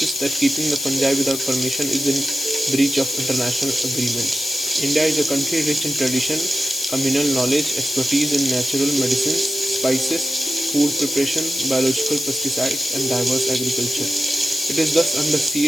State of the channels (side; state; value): left; noise; hiss, 5 dB below the sound